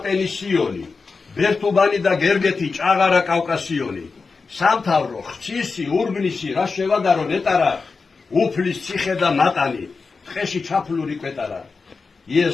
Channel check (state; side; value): quieter; right; 4.5 dB